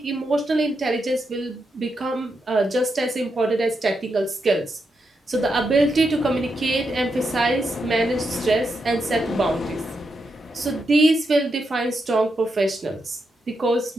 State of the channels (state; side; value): normal; both; correlation 0.84